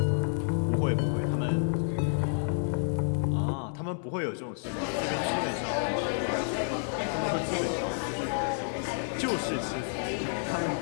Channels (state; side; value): silent; right; digital silence